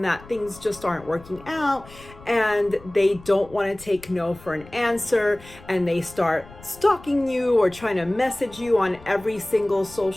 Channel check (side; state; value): left; noise; rumble, 21 dB below the sound